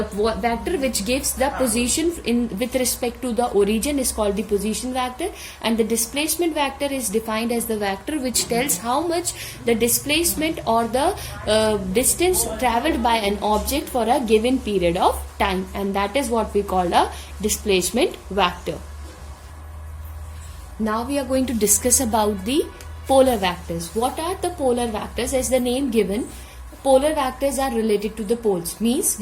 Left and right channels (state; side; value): identical; both; correlation 1.00